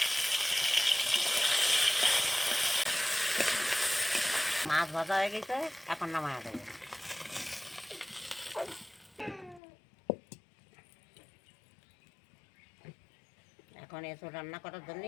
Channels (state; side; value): drops out; right; at 9.6 s